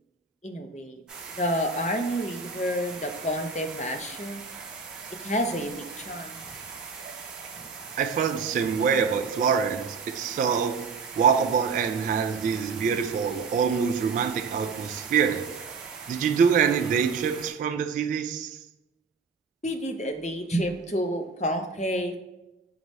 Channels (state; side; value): quieter; left; 4.7 dB